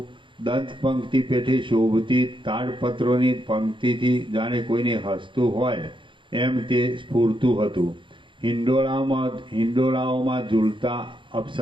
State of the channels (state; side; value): late; left; 0.24 ms